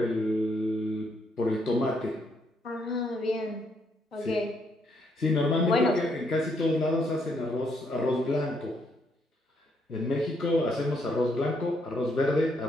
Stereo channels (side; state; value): both; normal; correlation 0.74